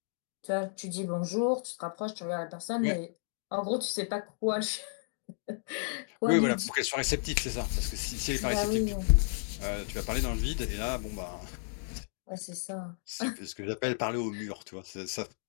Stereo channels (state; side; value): silent; right; digital silence